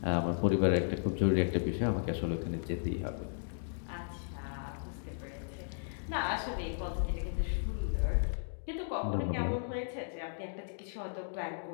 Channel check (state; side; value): silent; right; digital silence